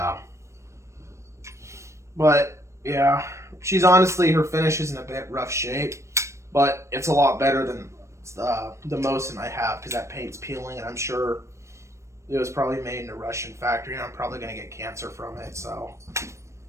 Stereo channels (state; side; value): late; left; 0.14 ms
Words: But, yeah. She's honestly, her finish is in a bit rough shape, but it's a lot better than the Mosin I have because that paint's peeling, and I'm sure it was probably made in a Russian factory, and I'm probably going to get cancer from it, so.